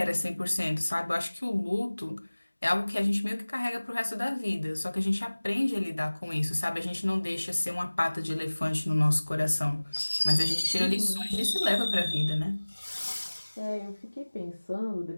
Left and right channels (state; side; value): inverted; both; correlation -1.00